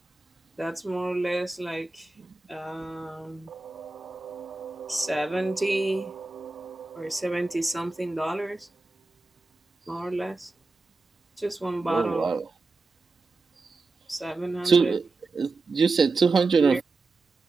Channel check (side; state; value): left; quieter; 3.6 dB